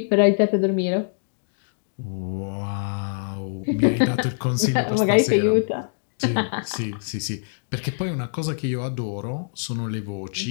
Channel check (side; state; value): right; silent; digital silence